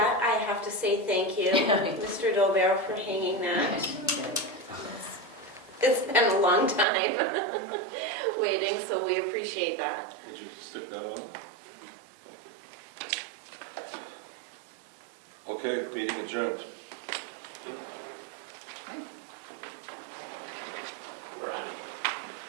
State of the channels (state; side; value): drops out; left; at 6.9 s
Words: I have to say thank you, Mr. Dolbear, for hanging that. It's been a long time waiting, so we appreciate that. Would you stick that on? Okay, meeting adjourned.